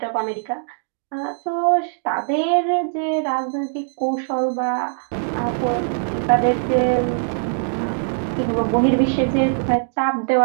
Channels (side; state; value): left; silent; digital silence